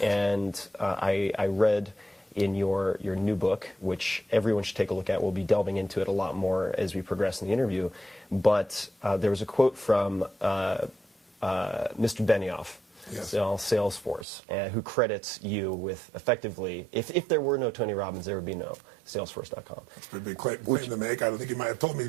And I read in your new book, which everyone should take a look at. We'll be delving into it a lot more as we progress in the interview. But there was a quote from Mr. Benioff, Salesforce, who credits you with effectively, if there were no Tony Robbins, there would be no Salesforce.com. That's a big claim to make. I don't think he might have told me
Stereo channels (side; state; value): left; drops out; at 14.2 s